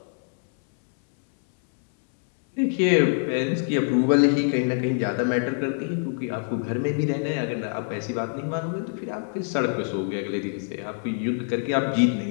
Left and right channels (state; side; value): silent; right; 62 dB below the other